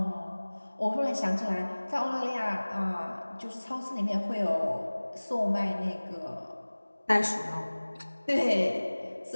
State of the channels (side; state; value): both; inverted; correlation -1.00